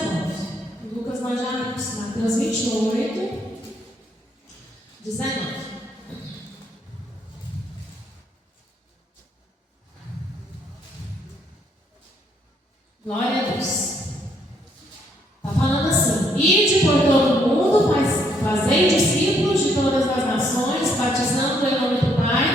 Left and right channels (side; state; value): both; normal; correlation 0.71